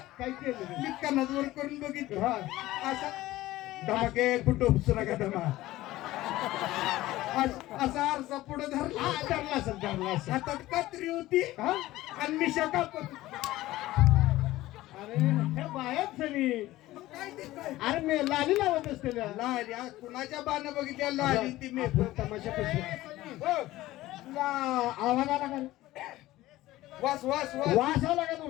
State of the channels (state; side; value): quieter; right; 16.7 dB